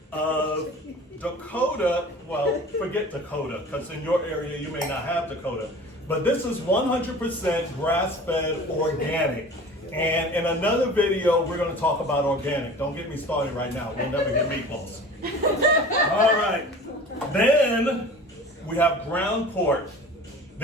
of Dakota, well, forget Dakota, because in your area you may not have Dakota, but this is 100% grass-fed organic. And in another video, we're going to talk about organic. Don't get me started right now. We'll never get meatballs. All right. Then we have ground pork.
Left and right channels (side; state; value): both; normal; correlation 0.41